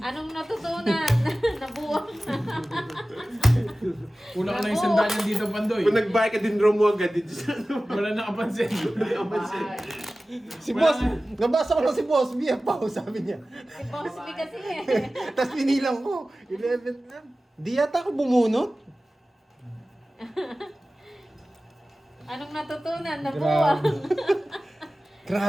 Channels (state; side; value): normal; both; correlation 0.96